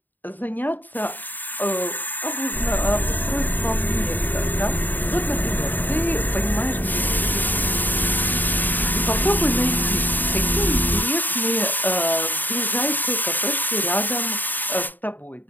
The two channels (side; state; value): right; late; 0.088 ms